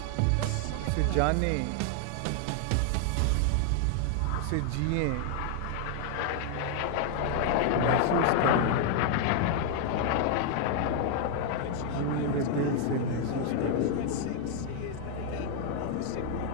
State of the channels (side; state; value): both; different; correlation 0.00